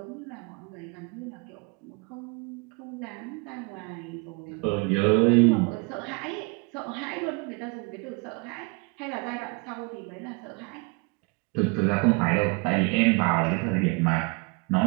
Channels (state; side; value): quieter; left; 29.3 dB